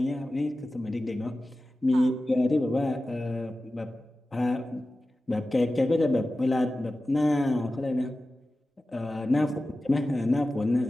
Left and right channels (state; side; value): normal; both; correlation 0.95